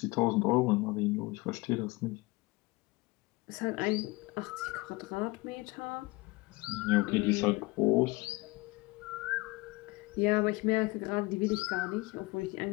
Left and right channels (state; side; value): quieter; right; 23.1 dB